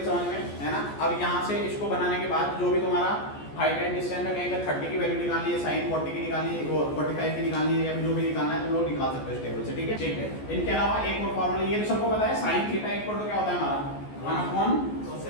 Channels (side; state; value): right; late; 14 ms